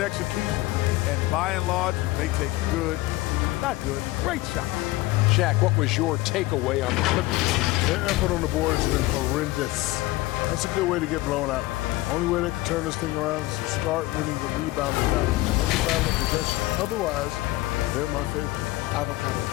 execution, and by and large, they take great shots. Shaq, what was your takeaway on the Clippers? Their effort on the board has been horrendous. That's a good way to get blown out. Only way they can turn this thing around is to start winning the rebounding battle. Possession. Otherwise, they're my favorite. Avocado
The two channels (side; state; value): right; quieter; 18.9 dB